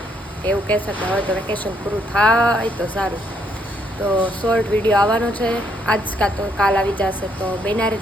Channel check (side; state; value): both; normal; correlation 0.71